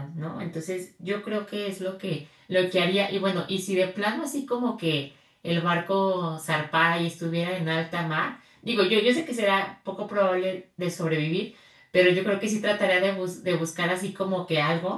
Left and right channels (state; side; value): identical; both; correlation 1.00